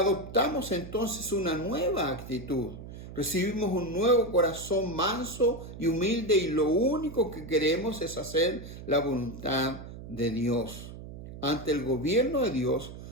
entonces una nueva actitud. Recibimos un nuevo corazón manso y humilde y lo único que queremos es hacer la voluntad de Dios. Ante el gobierno de Dios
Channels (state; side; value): noise; right; hum, 13 dB below the sound